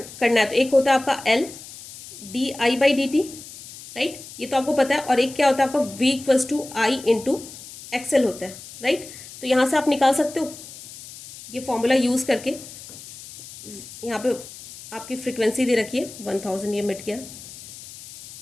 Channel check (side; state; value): left; noise; hiss, 15 dB below the sound